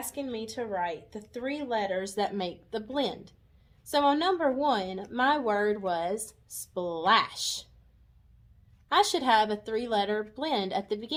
me to write the 3 letters that make the blend. So on number 1, my word was splash. I should have a 3-letter blend at the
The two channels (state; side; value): identical; both; correlation 1.00